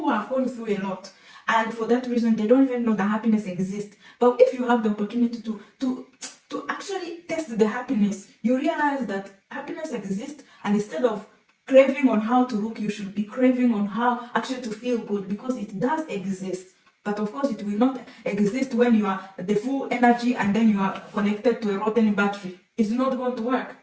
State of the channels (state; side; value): identical; both; correlation 1.00